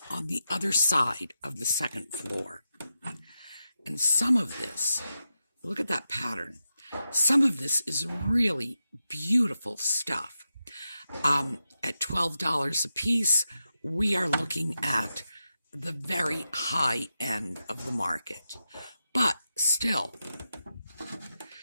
on the other side of the second floor. And some of this, look at that pattern. Some of this is really beautiful stuff. At $12 a piece, we are looking at the very high end of the market. But still,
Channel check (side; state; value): both; inverted; correlation -0.89